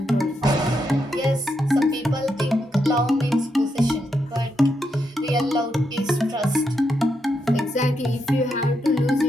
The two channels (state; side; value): normal; both; correlation 0.82